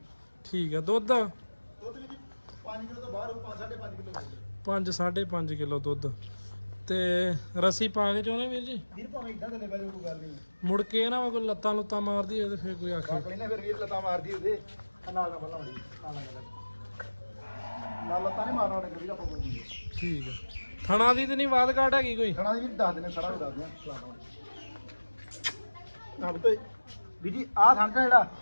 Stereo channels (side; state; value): both; inverted; correlation -1.00